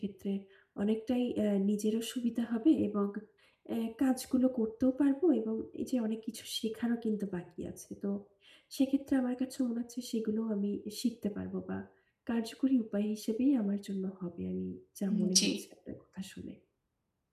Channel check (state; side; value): identical; both; correlation 1.00